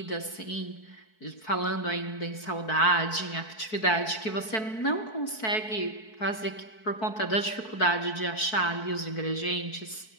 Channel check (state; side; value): late; right; 4.6 ms